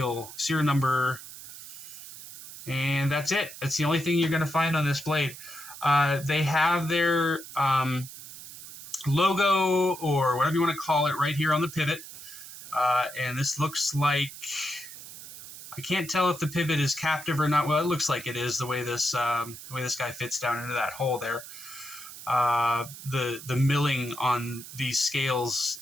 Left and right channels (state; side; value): noise; right; hiss, 14 dB below the sound